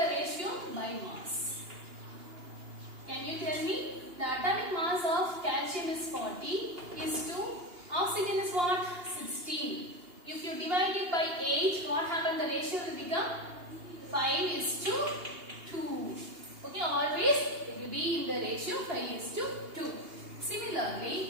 ratio by mass? Can you tell me? The atomic mass of calcium is 40 is to oxygen is what? 16. If you divide it by 8, what happens? The ratio will become 5 is to 2. Okay, always it will be in the ratio 5 is to 2.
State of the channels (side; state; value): left; late; 2.8 ms